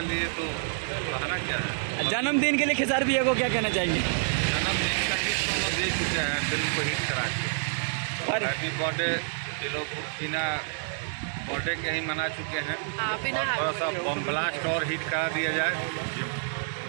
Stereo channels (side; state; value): left; silent; digital silence